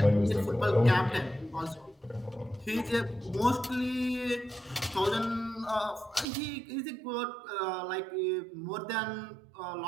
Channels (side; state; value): left; drops out; at 6.2 s